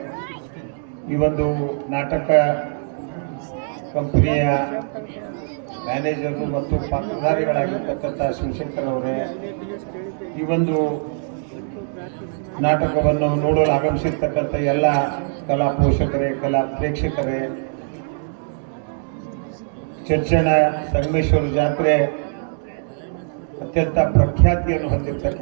ಈ ಒಂದು ನಾಟಕ ಕಂಪನಿಯ ಮ್ಯಾನೇಜರು ಮತ್ತು ಪಾತ್ರಧಾರಿಗಳಾಗಿರ್ತಕ್ಕಂಥ ಶಿವಶಂಕರ್ ಅವರೇ, ಈ ಒಂದು ನಾಟಕವನ್ನು ನೋಡಲು ಆಗಮಿಸಿರ್ತಕ್ಕಂಥ ಎಲ್ಲ ಕಲಾ ಪೋಷಕರೇ, ಕಲಾ ಪ್ರೇಕ್ಷಕರೇ, ಚರ್ಚನ ಸಂಗಮೇಶ್ವರ ಜಾತ್ರೆ ಅತ್ಯಂತ ಪ್ರಖ್ಯಾತಿಯನ್ನು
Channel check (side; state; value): left; silent; digital silence